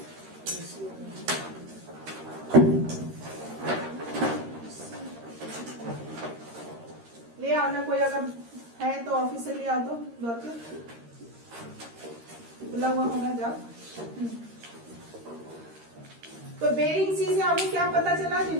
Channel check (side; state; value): left; late; 13 ms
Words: ले आओ ना, कोई अगर है तो ऑफिस से ले आओ, तो दौड़ के खुला हुआ होना जाओ। तो बेरिंग सी से आपको क्या पता चला कि